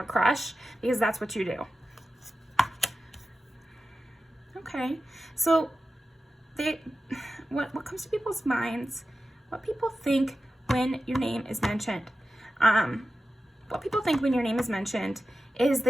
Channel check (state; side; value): normal; both; correlation 0.93